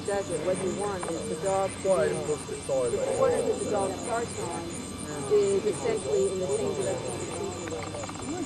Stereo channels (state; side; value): identical; both; correlation 1.00